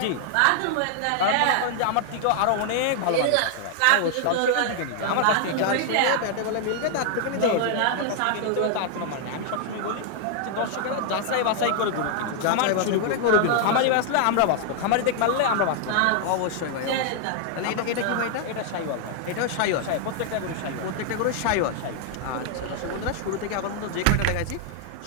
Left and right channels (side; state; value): both; different; correlation 0.00